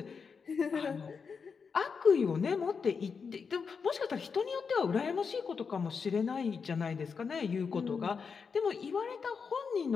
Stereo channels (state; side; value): quieter; right; 5.7 dB